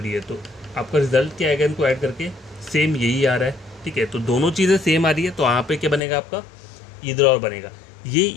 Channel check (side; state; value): right; drops out; at 6.0 s